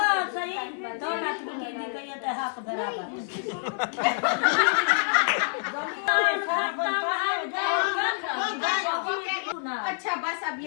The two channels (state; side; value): silent; right; 60 dB below the other